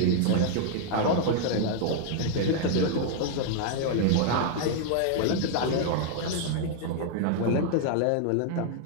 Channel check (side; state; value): both; different; correlation -0.01